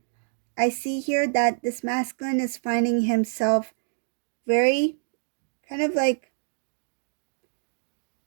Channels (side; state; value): left; silent; digital silence